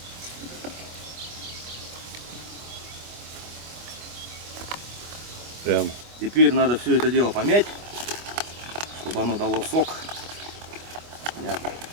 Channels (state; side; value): late; left; 25 ms